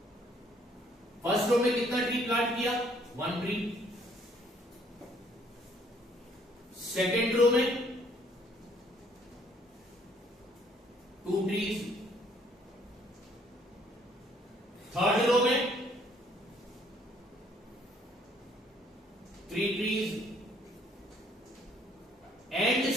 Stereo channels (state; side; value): normal; both; correlation 0.63